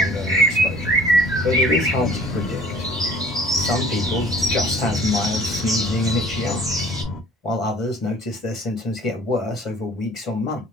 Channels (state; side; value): normal; both; correlation 0.51